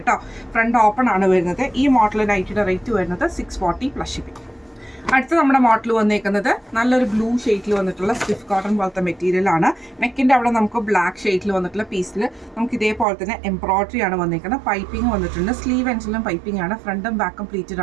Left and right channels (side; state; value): left; drops out; at 13.1 s